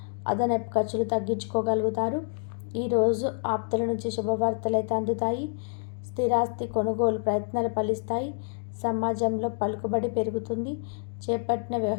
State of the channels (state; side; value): silent; right; digital silence